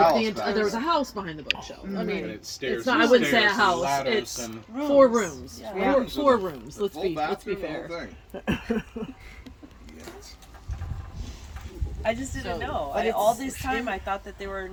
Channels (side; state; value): both; identical; correlation 1.00